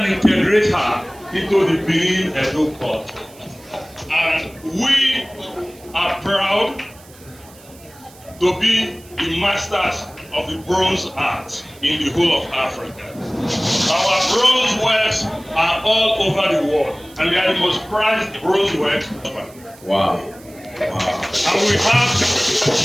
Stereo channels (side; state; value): right; noise; hiss, 24 dB below the sound